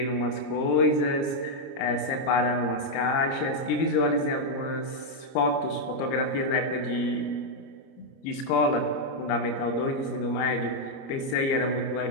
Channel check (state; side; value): late; right; 30 ms